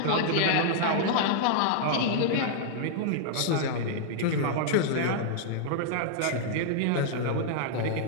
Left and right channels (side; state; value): both; different; correlation -0.01